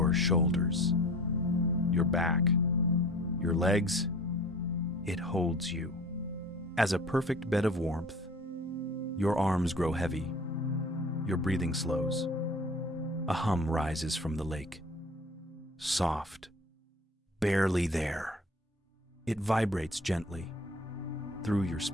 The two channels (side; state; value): both; normal; correlation 0.44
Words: shoulders, your back, your legs. It holds you. As a perfect bed of warmth, your arms grow heavy, your breathing slows. A hum rises from the lake, soft, barely there. It vibrates gently through your